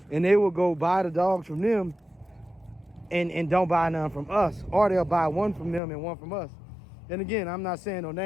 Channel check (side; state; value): right; drops out; at 5.8 s